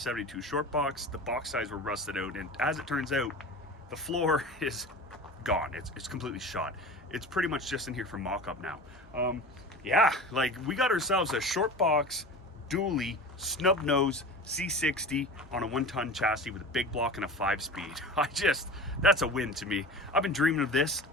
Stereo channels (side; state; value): both; normal; correlation 0.34